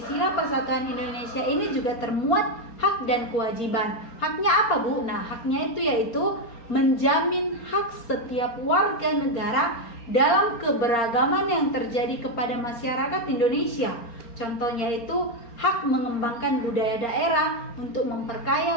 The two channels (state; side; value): late; right; 4.3 ms